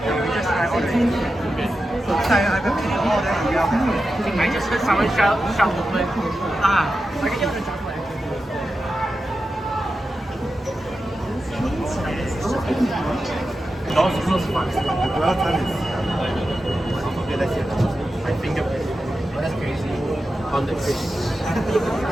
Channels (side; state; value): both; normal; correlation 0.91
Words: I just heard someone shout the word. I can hear the chocolate. Doors close fast. The dwell time is okay, let's see. My fingerprint. Oh, that's crazy. On the fish.